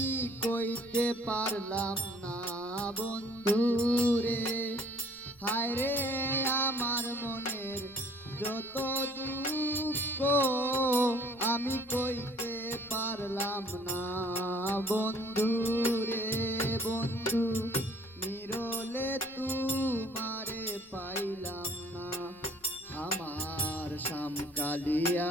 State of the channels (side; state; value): left; noise; rumble, 27 dB below the sound